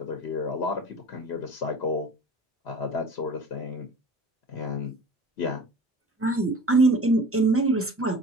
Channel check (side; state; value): both; normal; correlation 0.41